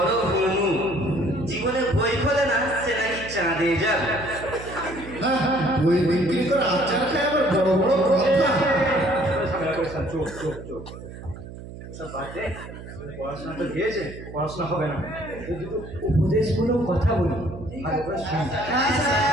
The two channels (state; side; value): noise; right; hum, 13 dB below the sound